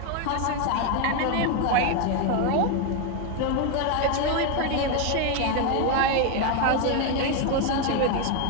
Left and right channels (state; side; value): different; both; correlation 0.01